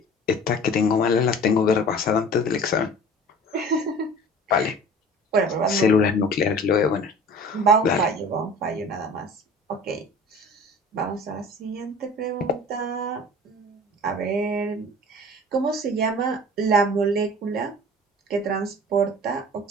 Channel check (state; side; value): normal; both; correlation 0.43